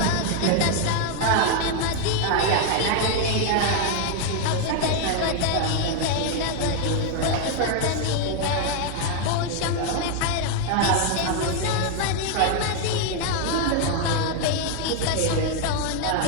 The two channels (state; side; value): different; both; correlation 0.00